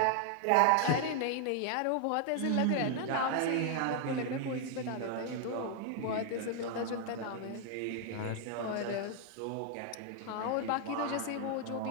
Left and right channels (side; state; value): both; different; correlation 0.00